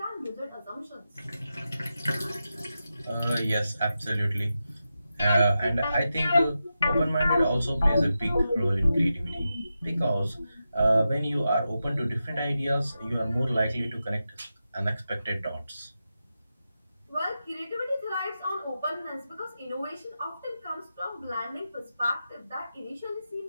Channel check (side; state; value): both; inverted; correlation -0.90